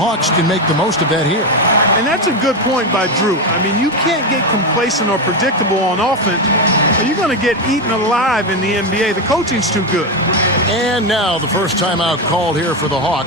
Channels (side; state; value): both; normal; correlation 0.11